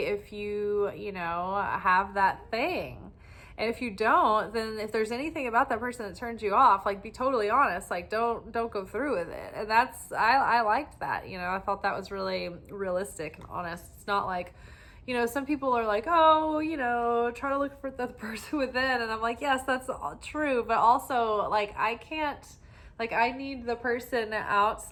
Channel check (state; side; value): identical; both; correlation 1.00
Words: you have that thing. And if you don't, then if there's anything about that person that turns you off, be totally honest, don't go through with it. And I liked that, I thought that was really realistic and honest. It's not some people are try to look for the person within. And I'm like, yes, that's true. But also I can't, I need the person